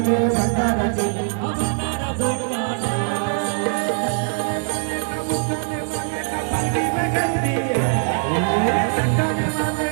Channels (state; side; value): silent; left; 64 dB below the other